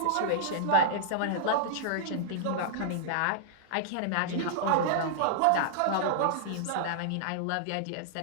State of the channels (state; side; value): different; both; correlation -0.01